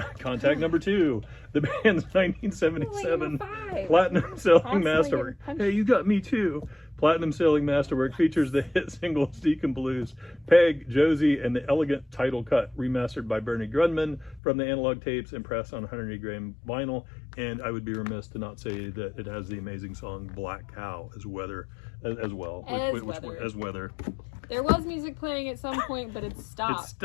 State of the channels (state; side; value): drops out; right; at 14.4 s